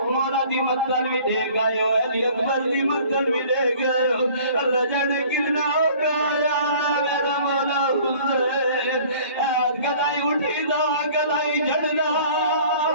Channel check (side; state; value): both; inverted; correlation -0.51